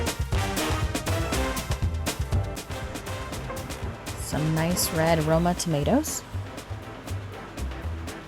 some nice red Roma tomatoes,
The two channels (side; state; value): both; identical; correlation 1.00